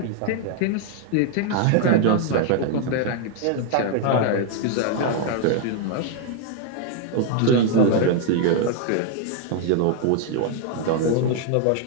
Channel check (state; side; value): different; both; correlation 0.00